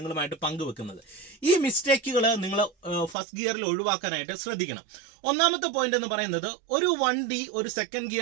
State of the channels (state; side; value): drops out; left; at 3.2 s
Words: പങ്കുവെക്കുന്നത്. ഈ മിസ്റ്റേക്കുകൾ നിങ്ങൾ ഫസ്റ്റ് ഗിയറിൽ ഒഴിവാക്കാനായിട്ട് ശ്രദ്ധിക്കണം. ഒന്നാമത്തെ പോയിന്റ് എന്ന് പറയുന്നത്, ഒരു വണ്ടി ഒരു സെക്കൻഡ്